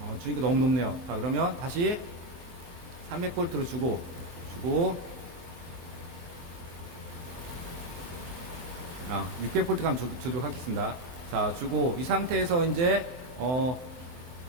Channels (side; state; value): left; late; 23 ms